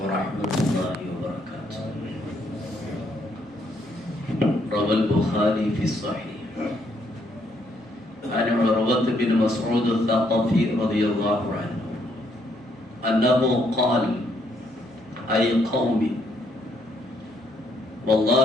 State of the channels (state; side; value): normal; both; correlation 0.72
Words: ورحمة الله وبركاته. روى البخاري في الصحيح عن عروة بن مسعود الثقفي رضي الله عنه أنه قال: أي قوم،